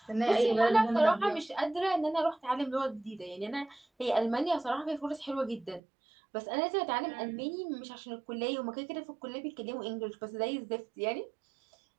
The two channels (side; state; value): left; drops out; at 5.8 s